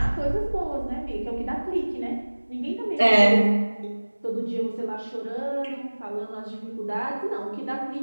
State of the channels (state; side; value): inverted; both; correlation -1.00